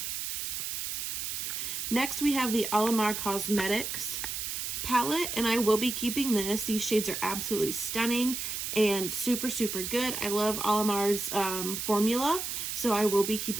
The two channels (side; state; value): right; noise; hiss, 4 dB below the sound